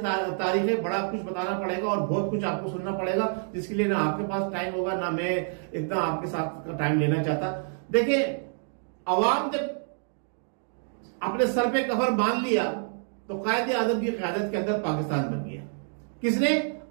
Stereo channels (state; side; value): silent; left; 60 dB below the other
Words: है, बड़ा कुछ बताना पड़ेगा और बहुत कुछ आपको सुनना पड़ेगा, जिसके लिए ना आपके पास टाइम होगा ना मैं इतना आपके साथ टाइम लेना चाहता। देखिए, अवाम जब अपने सर पे कफर बांध लिया तो कायदे आजम की क़यादत के अंदर पाकिस्तान बन गया। किसने?